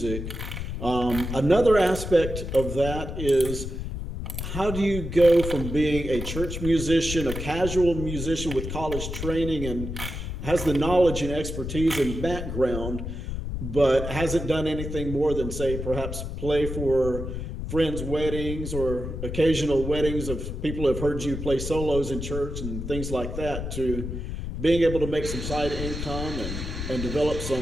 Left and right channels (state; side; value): noise; left; rumble, 6 dB below the sound